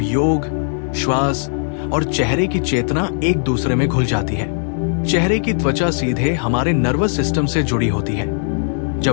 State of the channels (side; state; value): right; silent; digital silence